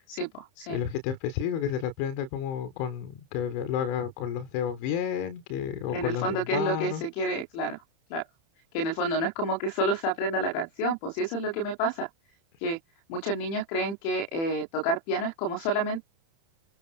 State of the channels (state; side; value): late; right; 30 ms